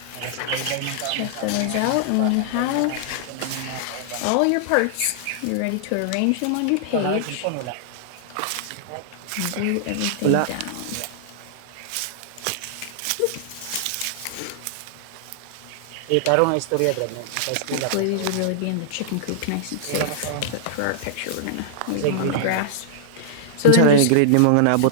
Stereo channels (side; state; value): both; different; correlation -0.01